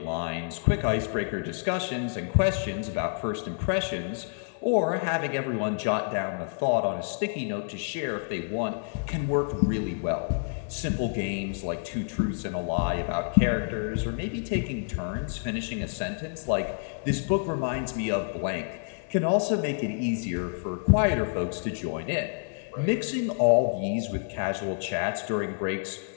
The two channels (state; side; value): silent; right; 58 dB below the other